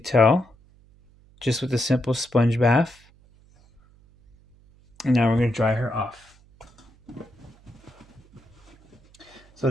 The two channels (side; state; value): right; noise; hum, 29 dB below the sound